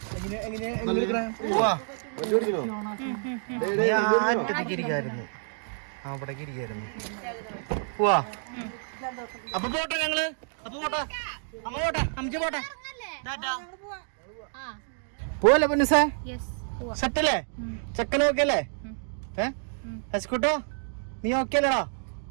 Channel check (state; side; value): silent; left; digital silence